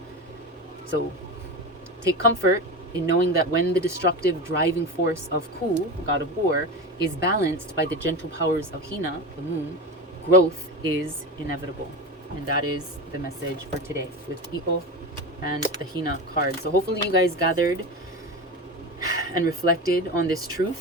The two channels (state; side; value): normal; both; correlation 0.24